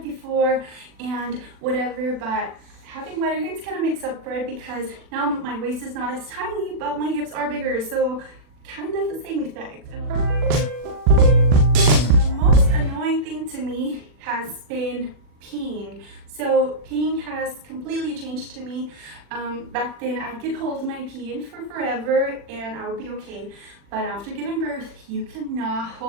before and whatever, but having wider hips kind of makes up for it, because now my waist is not as tiny, but my hips are bigger, so kind of the same effect. The most annoying thing to me has been peeing. So peeing has completely changed to me. Back then I could hold my pee in for forever and I would be okay, but after giving birth you cannot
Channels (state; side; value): late; left; 40 ms